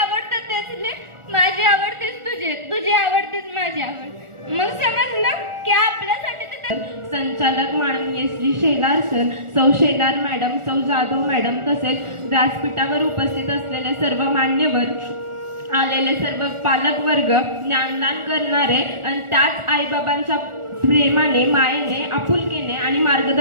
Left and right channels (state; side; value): late; left; 1.4 ms